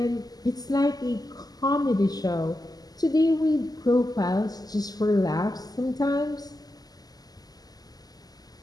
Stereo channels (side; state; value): right; late; 0.18 ms